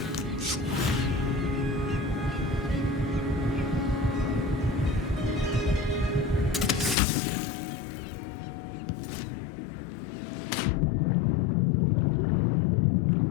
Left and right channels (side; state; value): right; drops out; at 7.0 s